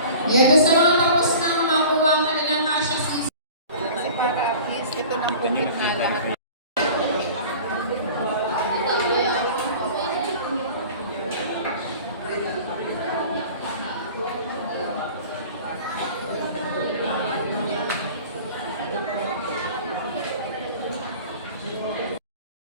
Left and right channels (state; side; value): inverted; both; correlation -0.42